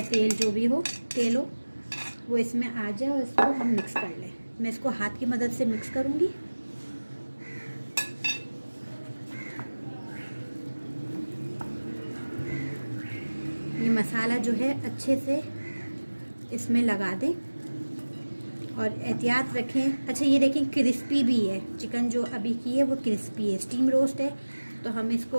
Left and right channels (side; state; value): both; inverted; correlation -1.00